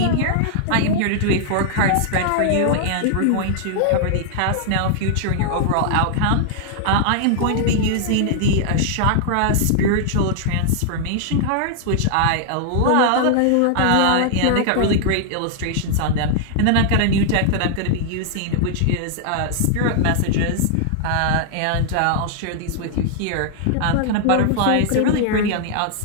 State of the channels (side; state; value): both; different; correlation -0.01